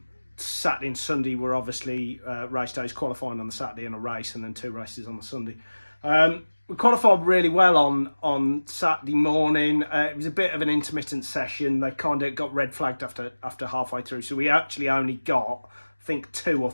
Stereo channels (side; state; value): both; inverted; correlation -1.00